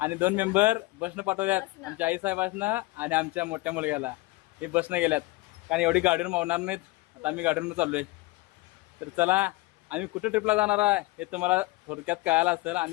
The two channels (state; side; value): quieter; right; 21.4 dB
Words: 2 मेंबर बसनं पाठवल्यात, आमच्या आई साहेबांना आणि आमच्या मोठ्या मुलग्याला. हे बसनं गेल्यात, कारण एवढी गाडीवर मावणार नाहीत. आता आम्ही गाडीवरून चाललोय. तर चला, आम्ही कुठं ट्रिपला जाणार आहे हे तुम्हाला थोडक्यात कळायला असेल,